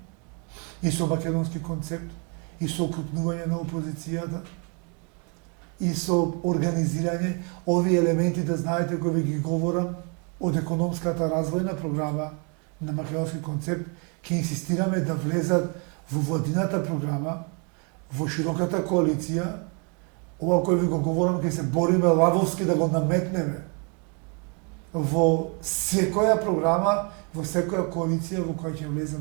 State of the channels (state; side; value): quieter; left; 35.4 dB